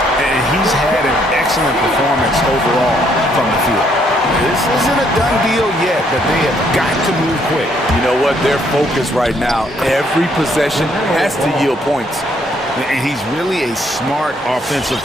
And he's had an excellent performance overall from the field. This isn't a done deal yet, but they have got to move quick. You know what? They're focused right now. Every possession has to yield points. And he's really a smart offensive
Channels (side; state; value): both; normal; correlation 0.69